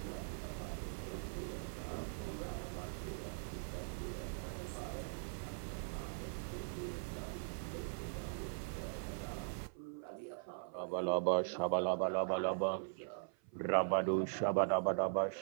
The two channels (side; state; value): left; silent; 50 dB below the other